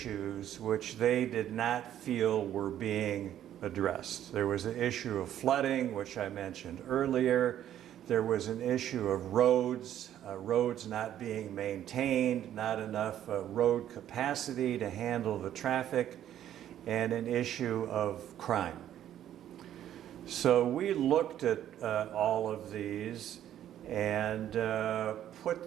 which they did not feel were being addressed. There was an issue of flooding, which I mentioned earlier. There was an issue of roads not being maintained, not enough road capacity to handle the traffic, and an issue of crime. So we looked at all of these and put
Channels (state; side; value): quieter; left; 11.3 dB